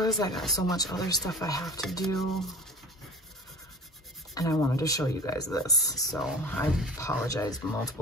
I got so much other stuff I have to do, and I wanted to show you guys this. So I apologized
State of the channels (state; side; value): normal; both; correlation 0.41